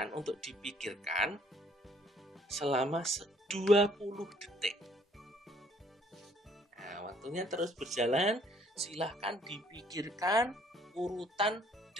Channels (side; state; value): both; normal; correlation 0.62